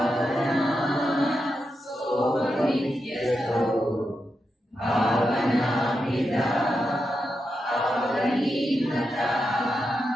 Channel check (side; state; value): both; normal; correlation 0.87